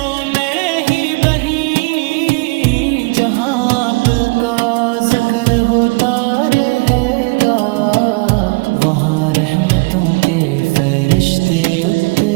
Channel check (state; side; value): quieter; left; 27.9 dB